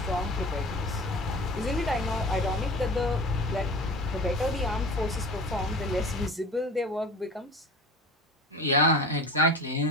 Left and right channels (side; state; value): both; normal; correlation 0.36